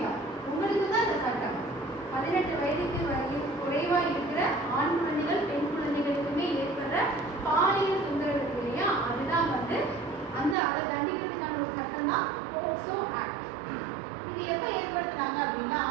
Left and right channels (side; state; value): left; drops out; at 10.6 s